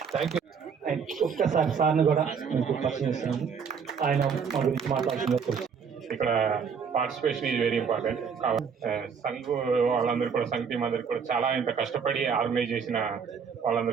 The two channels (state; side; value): quieter; left; 6.4 dB